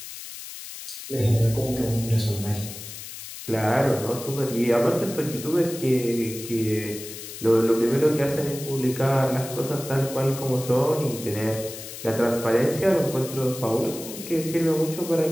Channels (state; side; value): noise; left; hiss, 11 dB below the sound